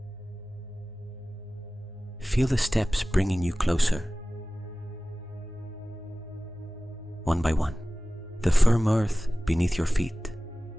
Feel the steps bringing you closer. One by one, the firm earth beneath your feet,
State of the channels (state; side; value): normal; both; correlation 0.97